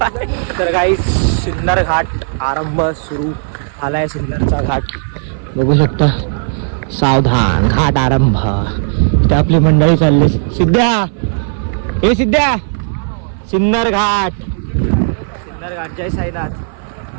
तर काही सिन्नर घाट आरंभ सुरू झालाय. सिन्नरचा घाट बघू शकता. सावधान घाट आरंभ. इथे आपली मंडळी चालली. सिद्ध्या हे सिद्ध्या. सिन्नर घाट. सिन्नर घाट. जय साईनाथ.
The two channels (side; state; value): left; silent; 59 dB below the other